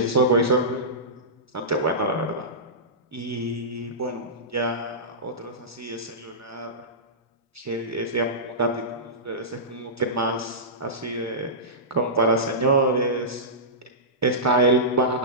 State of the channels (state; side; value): normal; both; correlation -0.19